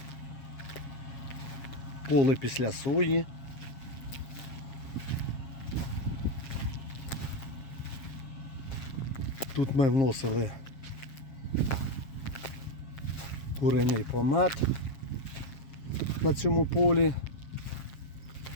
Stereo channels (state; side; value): late; right; 7.4 ms